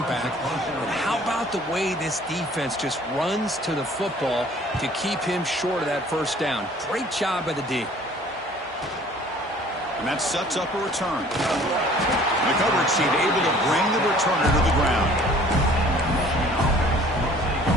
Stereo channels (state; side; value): normal; both; correlation 0.53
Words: back. But how about the way this defense just runs to the football to keep him short of that first down? Great job by the D. And that sets up a return. The coverage team able to bring the returner to the ground.